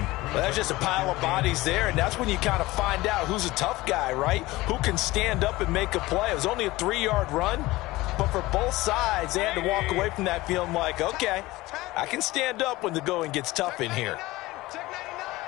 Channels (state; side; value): quieter; right; 19.2 dB